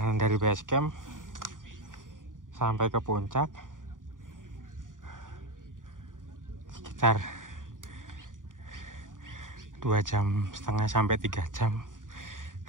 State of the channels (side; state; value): left; late; 0.88 ms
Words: dari Basecamp sampai ke puncak sekitar 2,5 jam sampai 3 jam